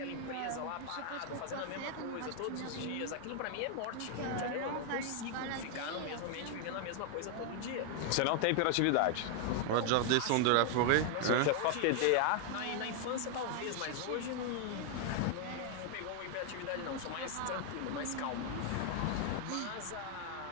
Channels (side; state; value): both; different; correlation 0.00